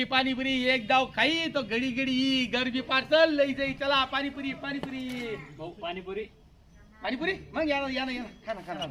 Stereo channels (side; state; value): both; identical; correlation 1.00